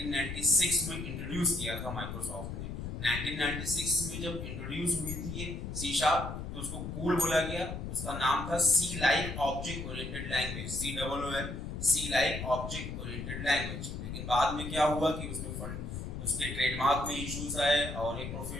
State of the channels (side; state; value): left; noise; rumble, 6 dB below the sound